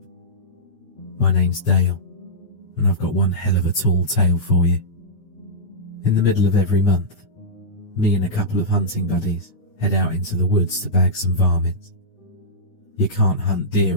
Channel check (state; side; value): late; right; 9.5 ms